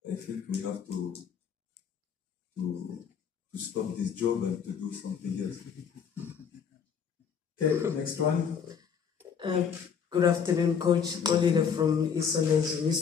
I think we have to stop this job and to do something else. Okay, next one. Good afternoon, Coach. Golila from Isola's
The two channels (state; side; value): quieter; right; 7.1 dB